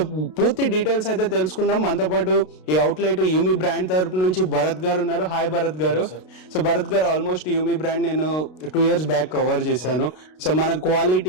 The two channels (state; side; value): late; right; 32 ms